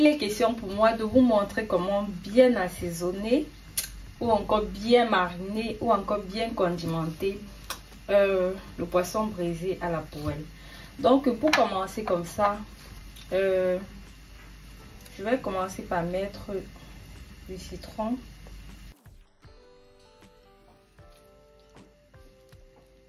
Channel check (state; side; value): identical; both; correlation 1.00